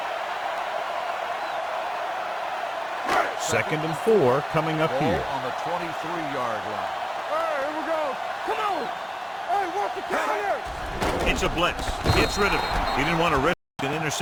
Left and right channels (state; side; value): identical; both; correlation 1.00